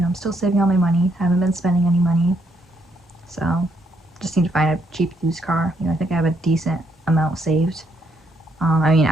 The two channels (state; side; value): normal; both; correlation 0.74